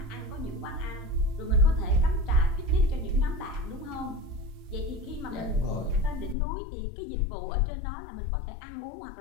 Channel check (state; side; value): drops out; right; at 6.4 s